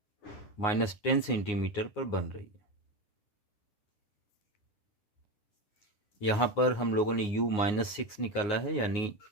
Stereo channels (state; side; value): late; right; 9.6 ms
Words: -10 सेंटीमीटर पर बन रही है। यहाँ पर हम लोगों ने u -6 निकाला है, यानी